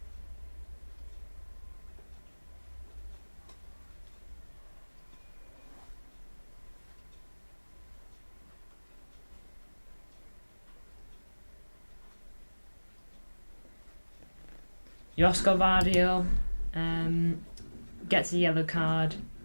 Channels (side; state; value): both; inverted; correlation -1.00